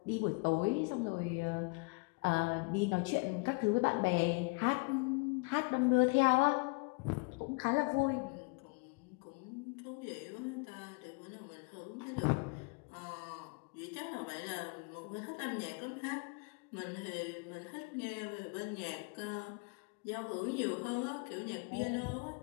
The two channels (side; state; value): right; quieter; 30.4 dB